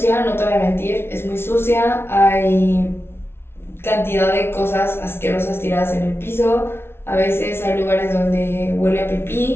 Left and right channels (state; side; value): late; right; 0.12 ms